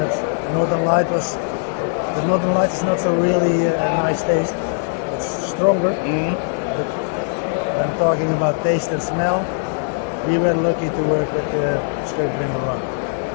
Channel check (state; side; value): silent; right; 66 dB below the other